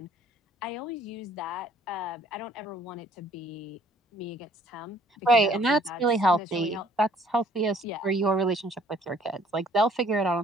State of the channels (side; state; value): both; normal; correlation 0.59